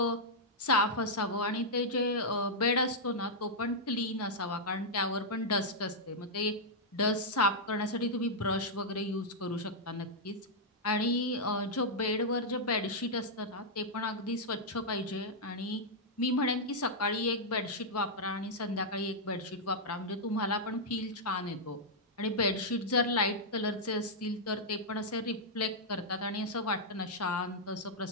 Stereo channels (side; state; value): both; normal; correlation -0.06